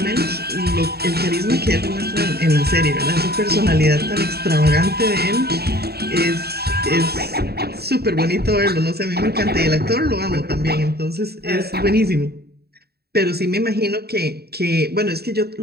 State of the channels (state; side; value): late; left; 0.46 ms